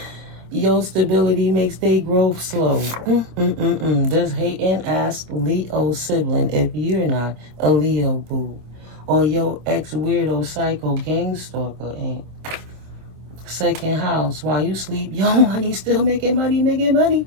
Your stability makes their growth slow. Does hating ask Leo sibling if you're not a Leo boo. Or your ex-weirdo psycho gang stalker ain't. Second house, while you sleep, your money still making money.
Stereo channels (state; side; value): late; left; 26 ms